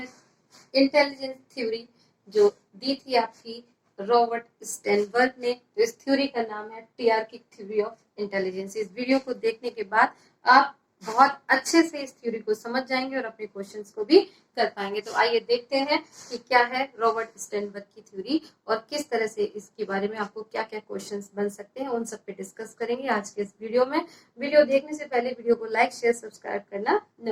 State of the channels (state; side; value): identical; both; correlation 1.00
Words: इंटेलिजेंस थ्योरी, जो दी थी आपकी रॉबर्ट स्टेनबर्ग ने। तो इस थ्योरी का नाम है टीआरकिक थ्योरी ऑफ इंटेलिजेंस। इस वीडियो को देखने के बाद आप बहुत अच्छे से इस थ्योरी को समझ जाएंगे और अपने क्वेश्चंस को भी कर पाएंगे। तो आइए देखते हैं कि क्या है रॉबर्ट स्टेनबर्ग की थ्योरी और किस तरह से इसके बारे में आपको क्या क्या क्वेश्चंस बन सकते हैं, उन सब पे डिस्कस करेंगे आज के इस वीडियो में। वीडियो देखने से पहले वीडियो को लाइक शेयर सब्सक्राइब करना